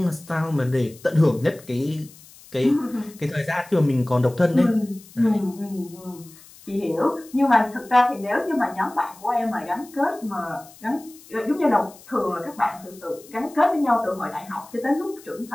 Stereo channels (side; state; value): left; noise; hiss, 22 dB below the sound